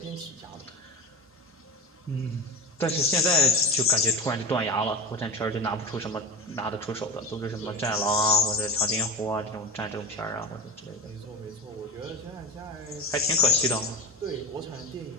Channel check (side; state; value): both; normal; correlation 0.26